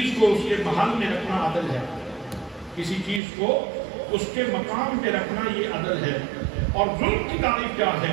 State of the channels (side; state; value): left; drops out; at 3.2 s